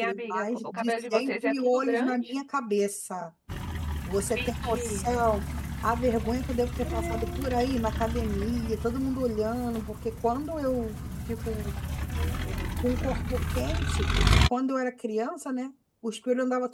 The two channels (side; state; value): both; identical; correlation 1.00